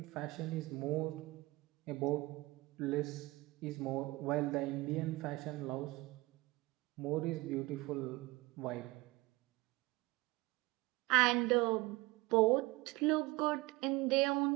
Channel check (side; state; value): left; quieter; 21.8 dB